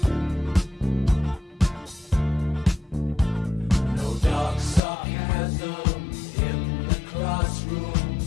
No dark sarcasm in the classroom.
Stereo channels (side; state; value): right; drops out; at 4.8 s